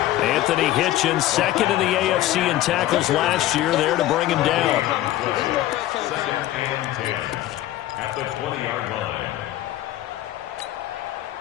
Anthony Hitchens, 2nd in the AFC in tackles last year, there to bring him down. 2nd and 10 at the 20-yard line.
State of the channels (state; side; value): quieter; right; 14.5 dB